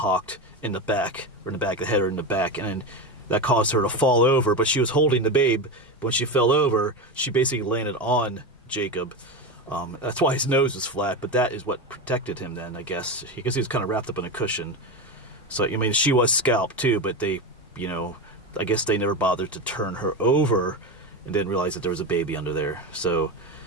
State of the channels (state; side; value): normal; both; correlation 0.19